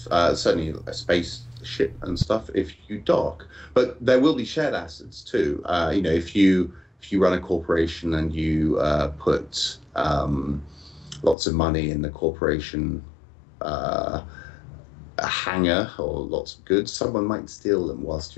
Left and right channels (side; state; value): right; drops out; at 11.4 s